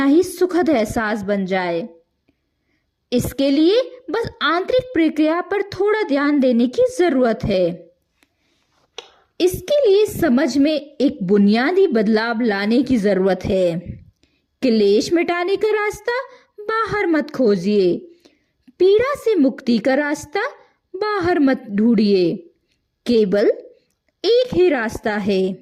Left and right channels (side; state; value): both; identical; correlation 1.00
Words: ही सुखद एहसास बन जाए। इसके लिए बस आंतरिक प्रक्रिया पर थोड़ा ध्यान देने की जरूरत है। इसके लिए समझ में एक बुनियादी बदलाव लाने की जरूरत है। क्लेश मिटाने का रास्ता बाहर मत खोजिए, पीड़ा से मुक्ति का रास्ता बाहर मत ढूंढिए। केवल एक ही रास्ता है,